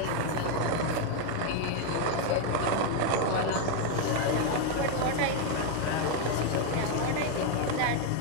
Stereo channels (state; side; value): different; both; correlation 0.01